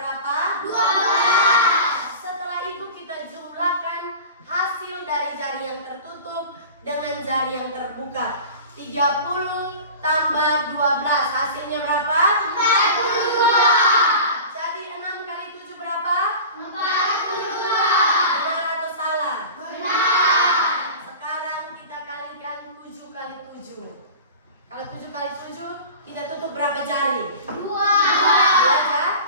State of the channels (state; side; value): inverted; both; correlation -0.36